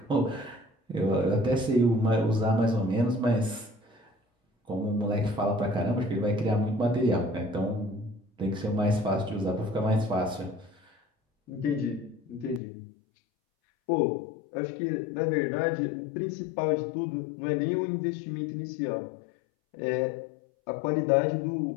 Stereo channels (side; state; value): right; drops out; at 12.6 s